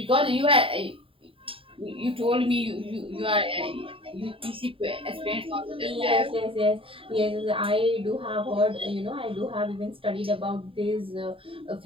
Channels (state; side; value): late; left; 0.26 ms